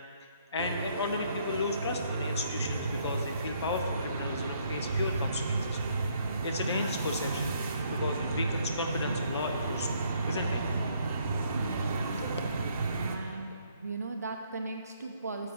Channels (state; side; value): inverted; both; correlation -0.68